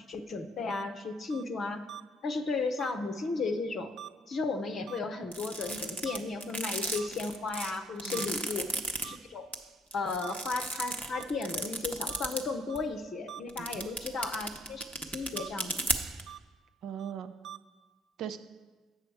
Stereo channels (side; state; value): both; normal; correlation 0.65